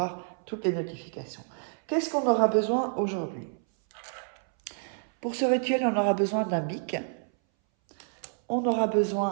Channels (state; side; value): silent; left; 59 dB below the other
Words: toutes les notifications. Qu'est-ce qu'on aura besoin aujourd'hui? Pour ce rituel, on aura besoin d'un bic, on aura